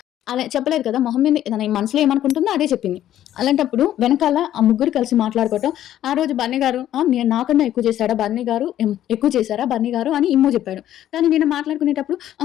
అలా చెప్పలేదు కదా. మొహం మీద తన మనసులో ఏమనుకుంటుందో అదే చెప్పింది. అలాంటప్పుడు వెనకాల ఆ ముగ్గురు కలిసి మాట్లాడుకోవటం, ఆ రోజు బన్నీ గారు నేను నాకన్నా ఎక్కువ చేశాడా బన్నీ గారు, ఎక్కువ చేశారా బన్నీ గారు అని ఇమ్ము చెప్పాడు. కానీ నేను మాట్లాడుకునేటప్పుడు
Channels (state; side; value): quieter; right; 12.1 dB